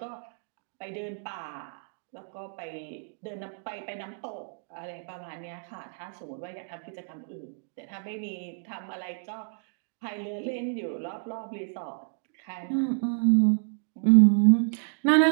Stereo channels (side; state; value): left; silent; digital silence